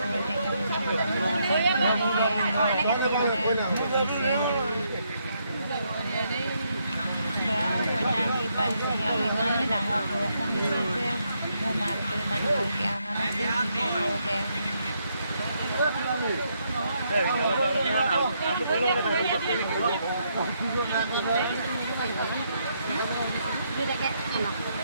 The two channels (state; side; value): inverted; both; correlation -0.76